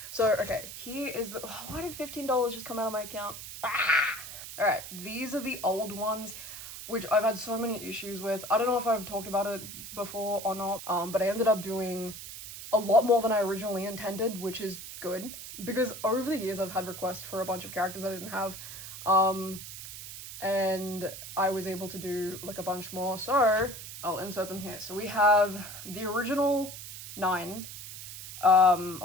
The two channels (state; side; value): noise; right; hiss, 11 dB below the sound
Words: So, okay, here is the... Oh, why did $15 just come out of my account? Ah! Alright, these are the old ones, which I've had so many issues with. I don't know if I've talked about it before or not, but I ended up doing a lot more than I originally intended, which is good. Because over the years I've had requests for a bunch of characters I didn't have, and I was able to do like a bunch more, so I'll insert them here. So we have the original 9, or